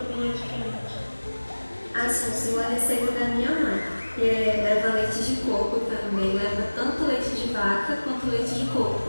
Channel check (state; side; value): inverted; both; correlation -1.00